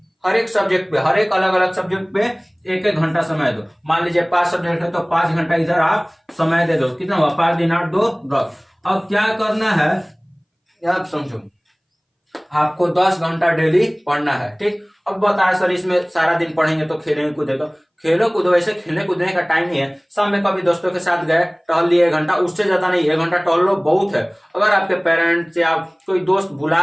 एक सब्जेक्ट पे, हर एक अलग अलग सब्जेक्ट पे 1-1 घंटा समय दो। मान लीजिए 5 सब्जेक्ट है तो 5 घंटा इधर आप समय दे दो। कितना हुआ, 5 दिन 8 2 10। अब क्या करना है आप समझो, आपको 10 घंटा डेली पढ़ना है, ठीक। अब बताया सर इसमें सारा दिन पढ़ेंगे तो खेलेंगे कूदेंगे, खेलो कूदो, वैसे खेलने कूदने का टाइम नहीं है। शाम में कभी दोस्तों के साथ गए, टहल लिए 1 घंटा, उससे ज्यादा नहीं, 1 घंटा टहल लो, बहुत है। अगर आपके पेरेंट्स या कोई दोस्त बुला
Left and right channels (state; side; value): identical; both; correlation 1.00